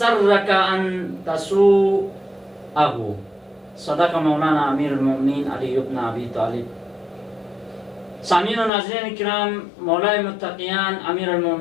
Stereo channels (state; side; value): drops out; right; at 8.7 s